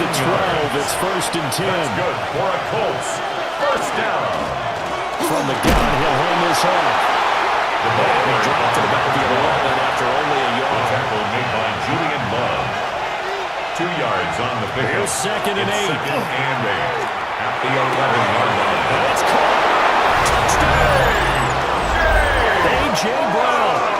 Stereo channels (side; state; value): both; identical; correlation 1.00